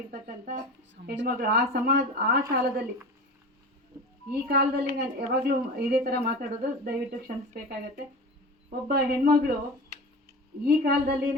ಹೆಣ್ಮಗಳು ಆ ಕಾಲದಲ್ಲಿ, ಈ ಕಾಲದಲ್ಲಿ ನಾನು ಯಾವಾಗಲೂ ಇದೇ ಥರ ಮಾತಾಡೋದು, ದಯವಿಟ್ಟು ಕ್ಷಮಿಸಬೇಕಾಗತ್ತೆ. ಒಬ್ಬ ಹೆಣ್ಮಗಳು ಈ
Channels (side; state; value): both; normal; correlation 0.32